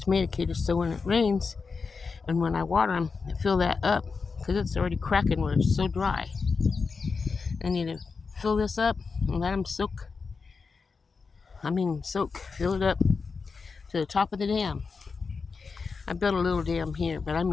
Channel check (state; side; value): quieter; right; 4.8 dB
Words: caters so when it rains and when I water them, I fill that up because it's already cracking where it's so dry. I need to fill this up and let them soak. Fill it up to the top of the dam. I built a little dam here, but I